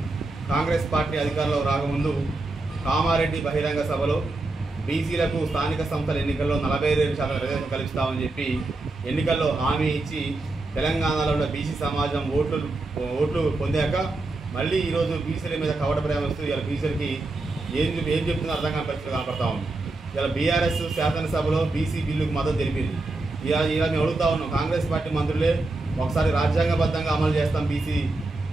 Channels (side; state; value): left; quieter; 3.1 dB